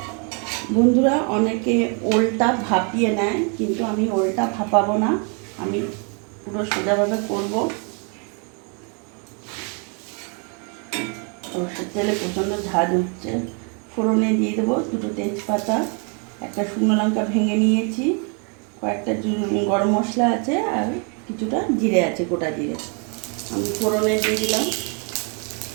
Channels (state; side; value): quieter; left; 37.3 dB